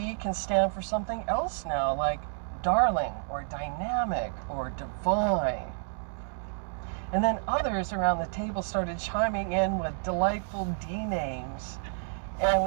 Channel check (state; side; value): silent; left; digital silence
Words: can stand for something else now, like darling or dynamic or divine. And then others around the table started chiming in with delightful D names, and